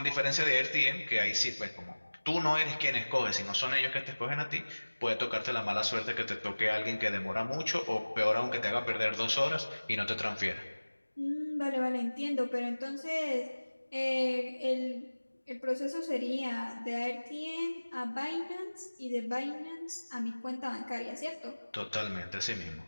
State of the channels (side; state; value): both; inverted; correlation -1.00